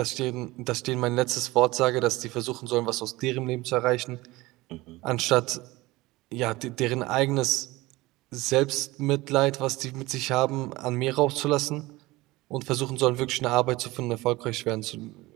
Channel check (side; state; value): left; quieter; 20.2 dB